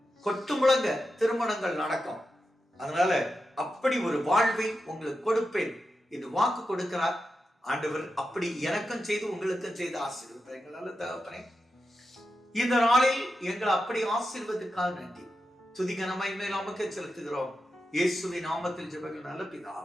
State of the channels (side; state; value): both; normal; correlation 0.89